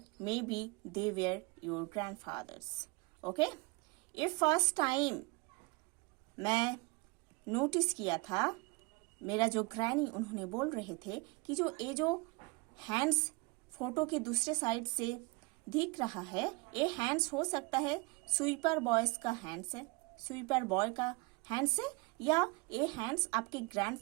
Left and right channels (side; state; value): left; quieter; 27.0 dB